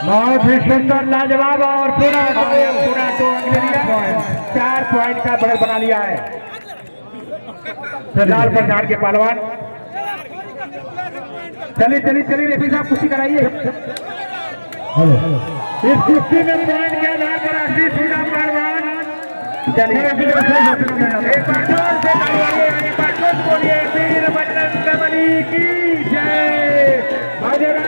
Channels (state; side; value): inverted; both; correlation -1.00